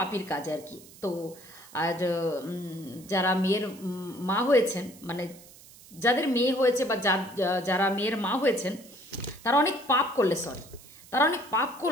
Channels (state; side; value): noise; right; hiss, 21 dB below the sound